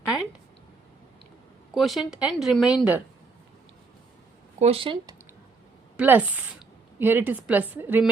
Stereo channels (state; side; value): quieter; left; 4.2 dB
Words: and remainder. Quotient plus, here it is plus,